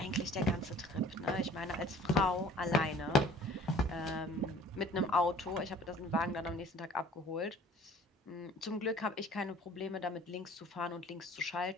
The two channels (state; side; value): normal; both; correlation 0.50